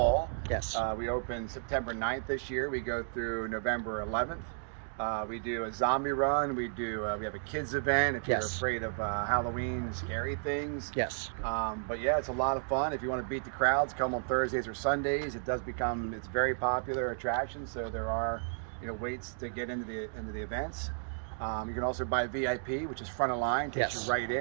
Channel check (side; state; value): left; silent; digital silence